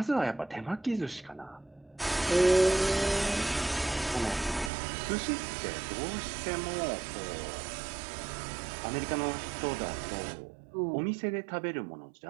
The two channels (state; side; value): drops out; left; at 4.7 s